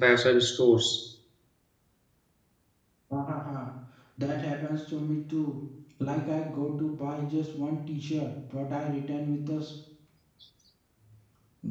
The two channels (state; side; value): identical; both; correlation 1.00